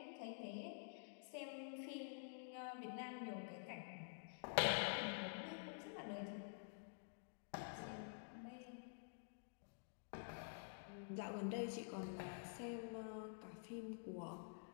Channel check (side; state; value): right; silent; digital silence